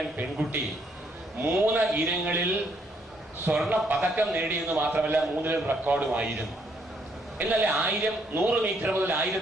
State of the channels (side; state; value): both; normal; correlation 0.70